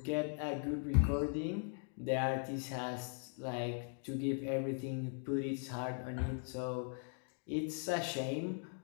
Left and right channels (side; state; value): right; silent; 51 dB below the other